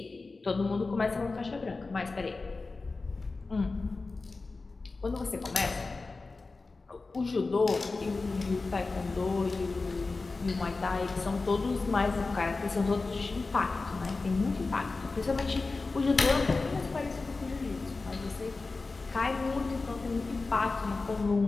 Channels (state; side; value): quieter; right; 3.7 dB